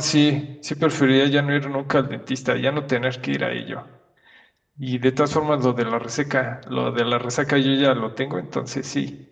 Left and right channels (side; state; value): both; identical; correlation 1.00